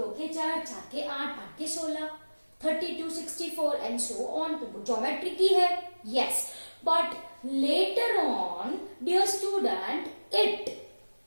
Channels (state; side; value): inverted; both; correlation -1.00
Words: के चार, चार के आठ, आठ के 16, 32, 64 and so on. तो ज्योमेट्री की है. Yes, but later on, dear student, it